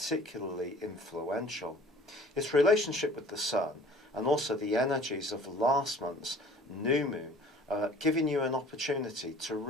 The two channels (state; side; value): normal; both; correlation 0.49